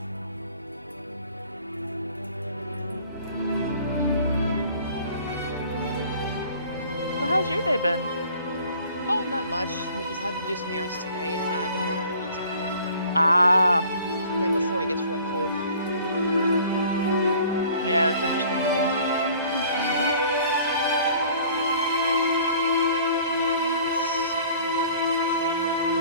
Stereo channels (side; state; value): both; inverted; correlation -0.51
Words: Well, how's your day been? Oh, not much. I just had to do some errands today, and I had to mow the lawns. Ah, Yeah, before it gets real cold. yeah, that's understandable. Alright, let's see.